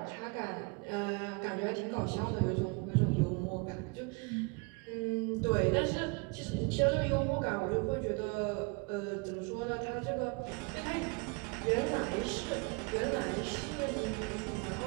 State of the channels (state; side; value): quieter; left; 30.8 dB